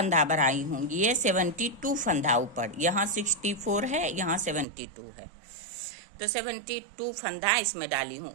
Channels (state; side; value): drops out; left; at 4.7 s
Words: भराई हूँ। ये 72 फंदा ऊपर, यहाँ 64 है, यहाँ 72 है। तो 72 फंदा इसमें डाली हूँ